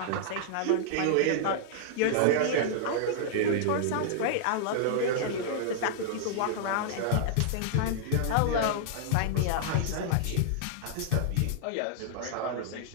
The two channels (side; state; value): both; different; correlation -0.01